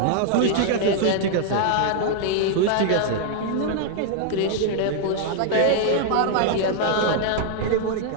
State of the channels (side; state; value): both; different; correlation 0.00